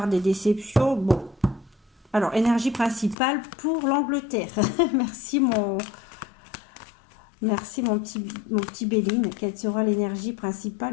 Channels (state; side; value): drops out; right; at 3.2 s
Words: des déceptions? Bon. Alors, énergie principale pour l'Angleterre. Merci mon petit Béline. Quelle sera l'énergie